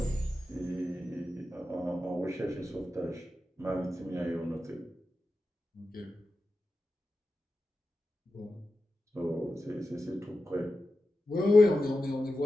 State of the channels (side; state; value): both; normal; correlation 0.92